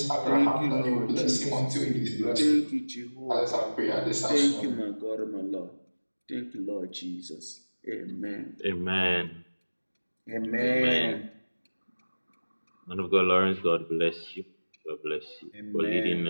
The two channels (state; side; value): inverted; both; correlation -1.00